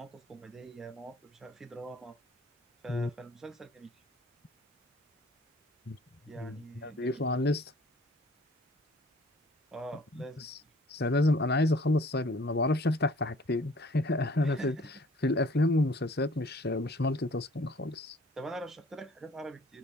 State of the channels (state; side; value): normal; both; correlation 0.53